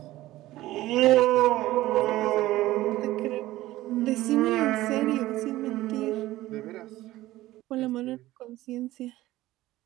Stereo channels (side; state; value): left; quieter; 16.4 dB